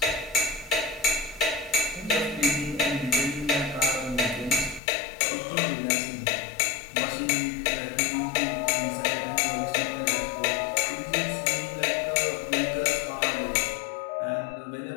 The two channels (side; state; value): right; drops out; at 4.8 s